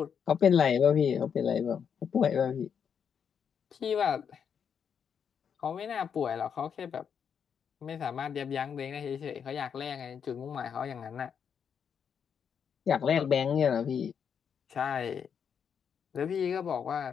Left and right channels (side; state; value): right; quieter; 7.4 dB